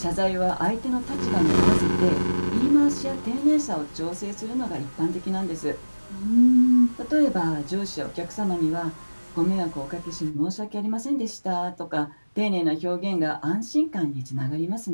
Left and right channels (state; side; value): inverted; both; correlation -1.00